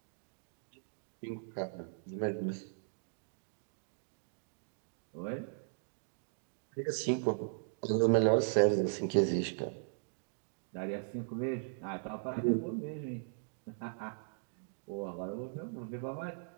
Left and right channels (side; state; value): left; silent; digital silence